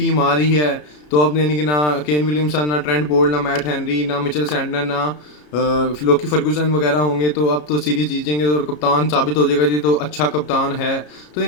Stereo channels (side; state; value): right; late; 33 ms